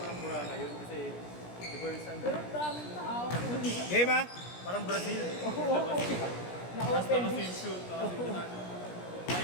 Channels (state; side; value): late; right; 17 ms